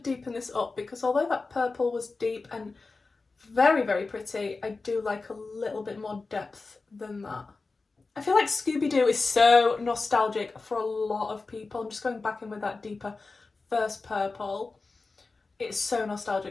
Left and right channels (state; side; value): quieter; right; 3.9 dB